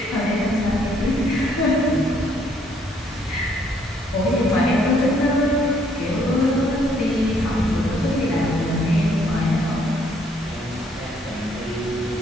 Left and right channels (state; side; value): normal; both; correlation 0.67